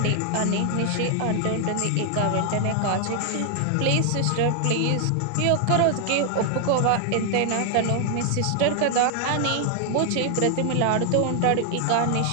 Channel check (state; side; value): different; both; correlation 0.00